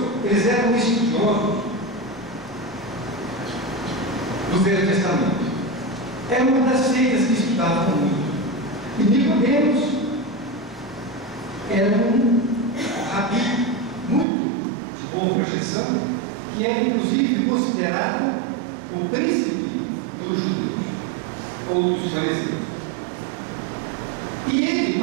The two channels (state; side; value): drops out; left; at 14.2 s